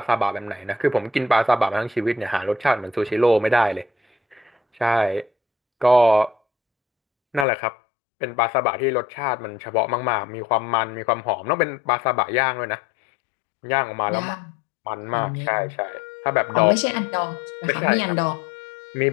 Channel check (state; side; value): drops out; right; at 7.5 s